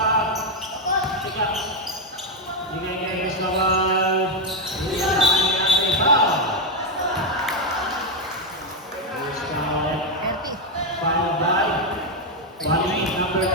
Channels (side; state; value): both; normal; correlation 0.05